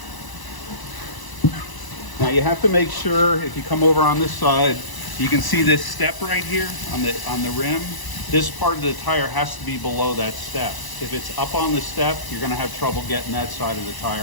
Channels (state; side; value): late; right; 1.0 ms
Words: Now you have to make sure, if you come over on this side, you can see this step right here on the rim. This part of the tire has to be below that step. If it's up on the step, you're going to have trouble getting that side of the